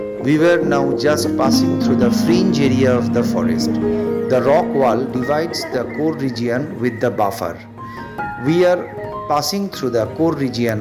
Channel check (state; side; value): identical; both; correlation 1.00